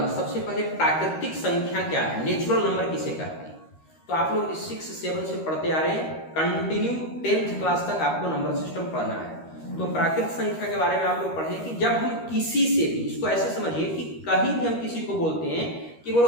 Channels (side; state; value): right; late; 13 ms